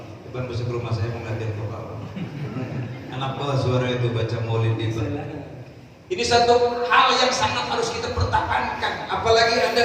Depan besok rumah saya mengajar ke bawah. Anak bawah suara itu baca maulid di bawah. Ini satu hal yang sangat harus kita pertahankan. Apalagi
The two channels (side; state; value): both; identical; correlation 1.00